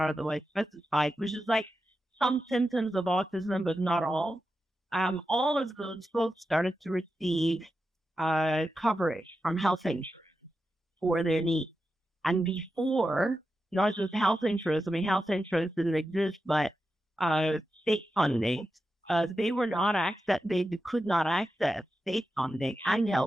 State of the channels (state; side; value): normal; both; correlation 0.90